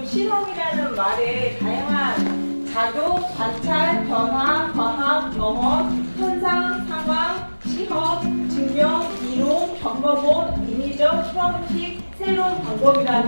실험이라는 말에 다양한 작용, 관찰, 변화, 과학, 경험, 현상, 상황, 시험, 증명, 이론, 겪어본, 인위적, 형식, 새로운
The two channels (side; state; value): both; inverted; correlation -1.00